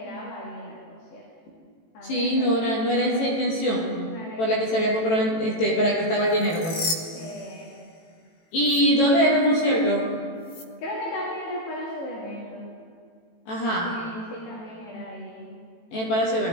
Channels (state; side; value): late; right; 18 ms